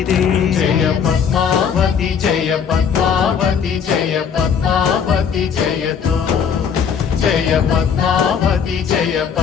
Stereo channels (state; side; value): quieter; right; 7.1 dB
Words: ಜಯ ಪದ್ಮಾವತಿ ಜಯ ಪದ್ಮಾವತಿ ಜಯ ಪದ್ಮಾವತಿ ಜಯತು ಜಯ ಪದ್ಮಾವತಿ ಜಯ